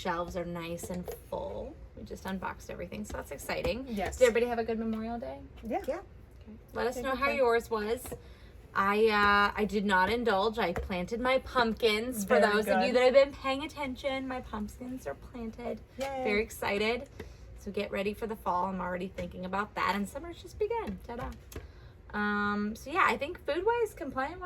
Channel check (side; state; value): both; identical; correlation 1.00